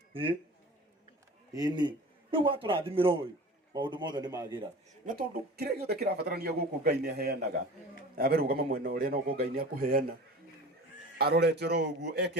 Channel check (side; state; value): both; normal; correlation 0.38